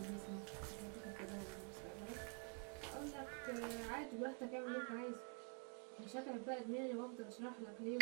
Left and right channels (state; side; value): quieter; left; 38.7 dB